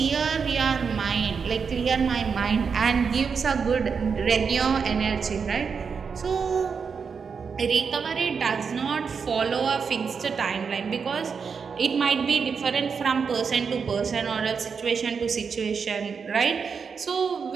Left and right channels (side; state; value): left; quieter; 5.9 dB